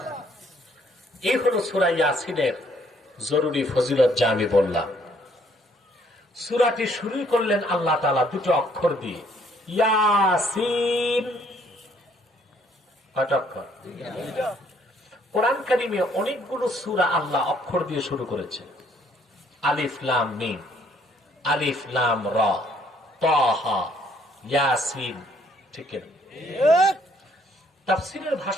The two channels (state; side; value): normal; both; correlation 0.65